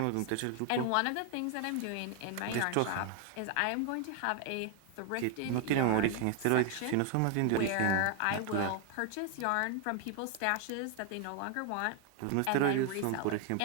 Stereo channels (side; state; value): both; different; correlation 0.00